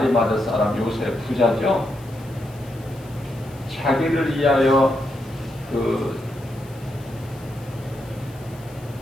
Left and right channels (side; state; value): left; noise; hiss, 24 dB below the sound